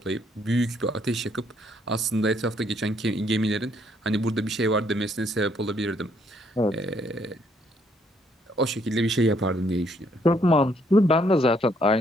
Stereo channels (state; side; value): normal; both; correlation 0.69